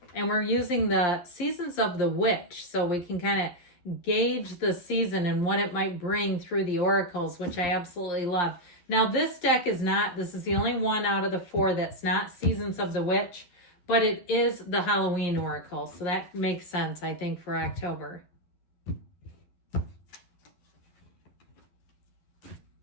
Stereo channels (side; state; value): right; late; 11 ms